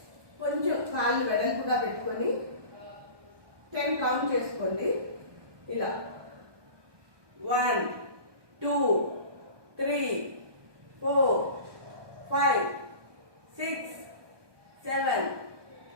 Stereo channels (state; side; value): late; left; 1.2 ms